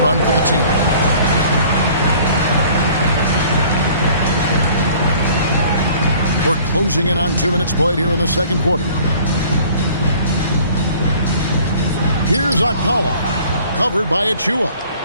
for the team. We're closing in on 2 minutes played here in the second quarter. Here's Okpala, covered by Achua.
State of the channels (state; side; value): inverted; both; correlation -0.51